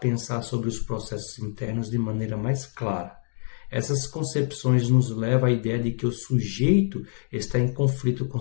sobre os processos internos de maneira mais clara. Essas concepções nos levam à ideia de que o sujeito está em conflito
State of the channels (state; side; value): silent; right; 58 dB below the other